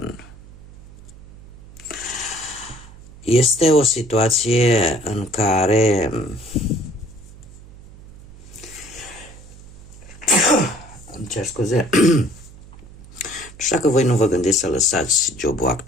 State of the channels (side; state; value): right; noise; hum, 19 dB below the sound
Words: Este o situație în care îmi cer scuze. Nu știu dacă voi nu vă gândiți să lăsați jobul